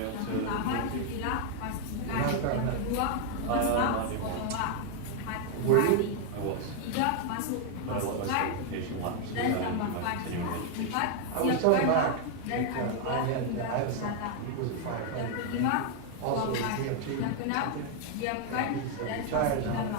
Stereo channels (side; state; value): both; different; correlation 0.00